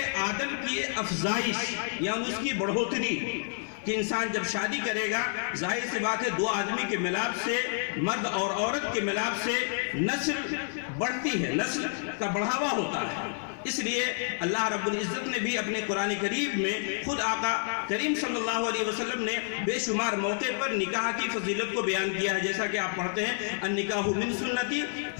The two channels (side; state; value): right; silent; 58 dB below the other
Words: آدم کی افزائش یا اس کی بڑھوتری، کہ انسان جب شادی کرے گا ظاہر سی بات ہے 2 آدمی کے ملاپ سے، مرد اور عورت کے ملاپ سے نسل بڑھتی ہے، نسل کا بڑھاوا ہوتا ہے۔ اس لیے اللہ رب العزت نے بھی اپنے قرآن کریم میں خود آقا کریم صلی اللہ علیہ وسلم نے بے شمار موقع پر نکاح کی فضیلت کو بیان کیا ہے، جیسا کہ آپ پڑھتے ہیں النکاح من سنتی